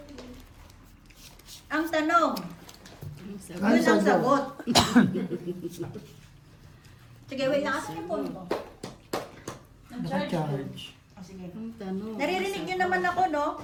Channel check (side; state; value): both; identical; correlation 1.00